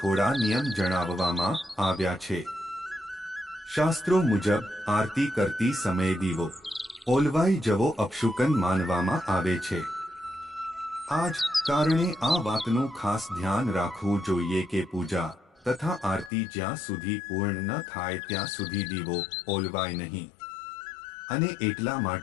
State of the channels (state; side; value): drops out; right; at 16.3 s